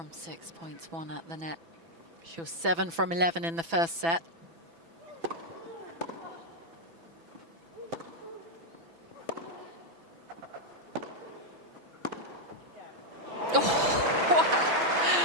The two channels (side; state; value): left; late; 6.0 ms